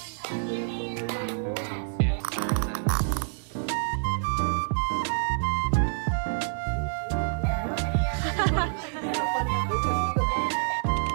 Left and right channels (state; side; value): silent; left; digital silence